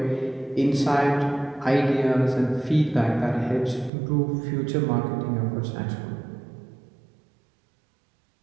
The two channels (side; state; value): left; drops out; at 3.9 s